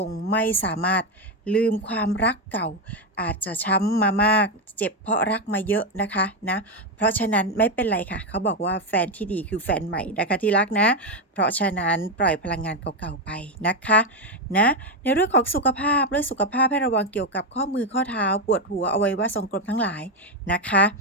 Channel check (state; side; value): normal; both; correlation 0.08